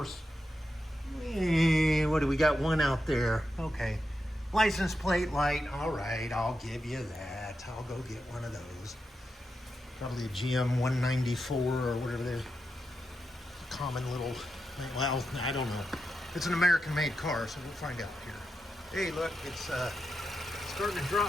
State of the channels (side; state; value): both; normal; correlation 0.87